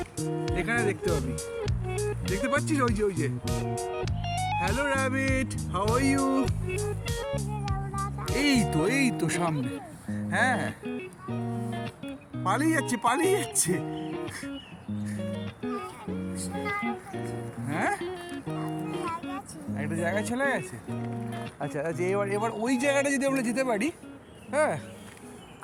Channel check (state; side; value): identical; both; correlation 1.00